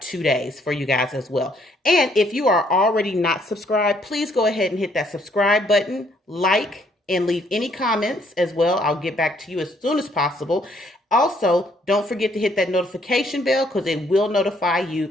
2 days for you guys as well. And if you are already not subscribed, please go ahead and hit that subscribe button, like, and leave any comments as well. I'll get back to you as soon as possible. Also, don't forget to hit that notification bell, because it will notify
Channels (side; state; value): both; normal; correlation 0.67